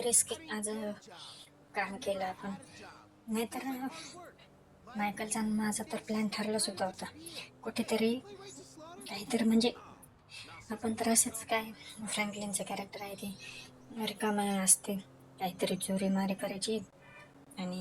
रिस्क आज काम केलं आपण. नाहीतर मायकलचा आणि माझा तर प्लॅन ठरलाच होता कुठेतरी काहीतरी म्हणजे आपण तर असंच काय फ्रँकलिनचं कॅरेक्टर आहे ते रिकामा असते, काहीतरी चोरी मारी करायची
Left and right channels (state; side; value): identical; both; correlation 1.00